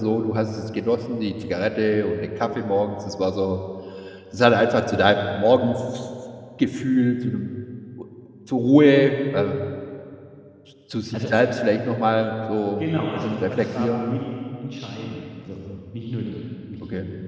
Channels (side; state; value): both; identical; correlation 1.00